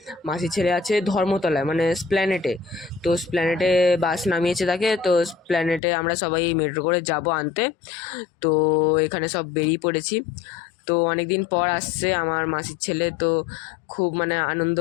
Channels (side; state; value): right; drops out; at 5.8 s